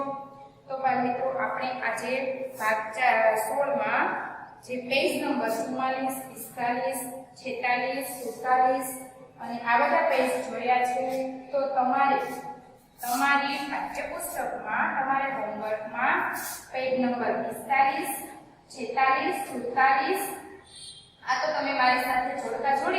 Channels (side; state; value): both; identical; correlation 1.00